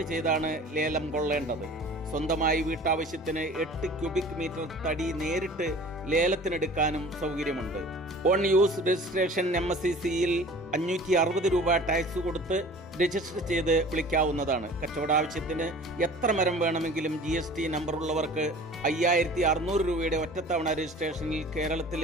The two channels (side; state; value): both; normal; correlation 0.44